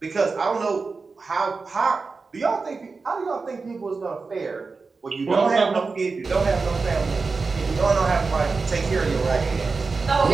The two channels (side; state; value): left; quieter; 4.3 dB